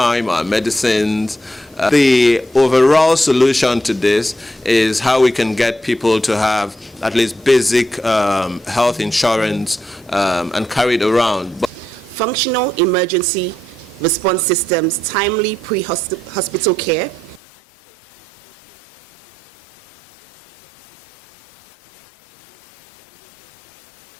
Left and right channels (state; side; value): drops out; right; at 17.4 s